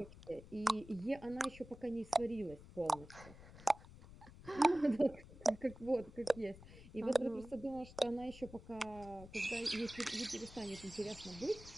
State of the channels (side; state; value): left; noise; rumble, 17 dB below the sound